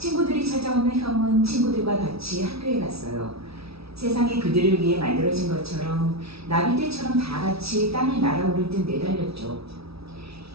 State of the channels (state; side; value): late; left; 0.77 ms